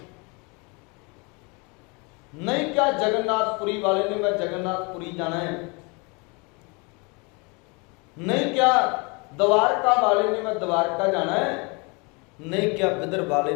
नहीं क्या जगन्नाथपुरी वाले ने मैं जगन्नाथपुरी जाना है, नहीं क्या द्वारका वाले ने मैं द्वारका जाना है, नहीं क्या बिदर वाले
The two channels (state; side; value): quieter; right; 30.0 dB